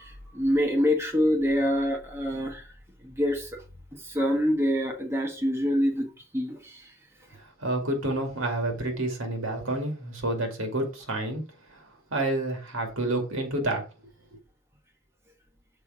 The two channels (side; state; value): both; normal; correlation 0.61